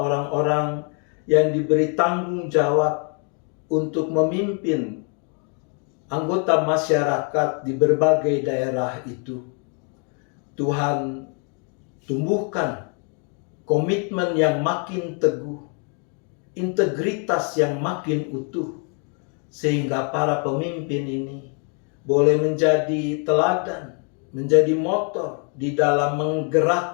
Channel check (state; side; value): quieter; right; 39.7 dB